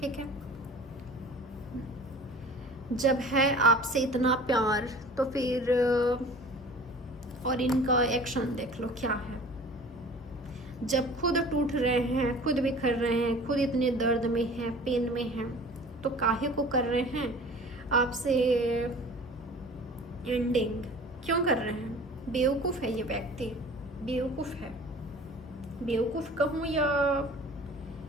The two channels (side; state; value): both; normal; correlation 0.44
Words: ठीक है, जब है आपसे इतना प्यार तो फिर और इनका एक्शन देख लो क्या है। जब खुद टूट रहे हैं, खुद बिखर रहे हैं, खुद इतने दर्द में हैं, पेन में हैं, तो काहे को कर रहे हैं आपसे एंडिंग? क्यों कर रहे हैं? बेवकूफ़ है ये व्यक्ति, बेवकूफ़ है। बेवकूफ़ कहूँ या